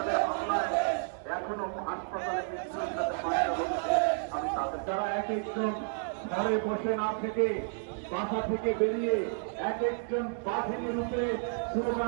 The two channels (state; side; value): silent; left; digital silence